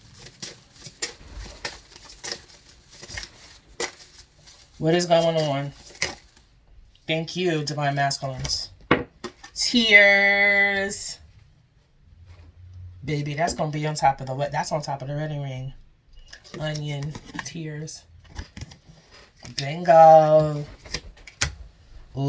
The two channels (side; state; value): both; identical; correlation 1.00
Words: What is going on? Thank you, Divine Masculines. Tears. Baby, that's going to be on top of the... That's on top of the wedding ring. Onion. Tears. Bingo.